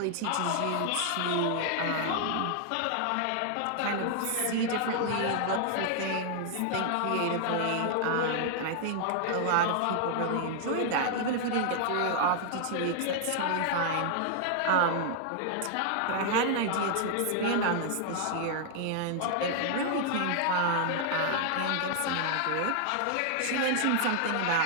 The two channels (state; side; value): different; both; correlation -0.01